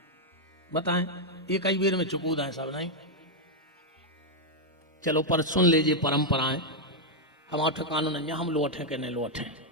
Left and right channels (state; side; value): normal; both; correlation -0.02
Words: बताएं। ये कई बेर में चुकूद है सब नहीं। चलो पर सुन लीजिए परंपराएं। हमारा ठिकाना नहीं है, हम लौटे के नहीं लौटे,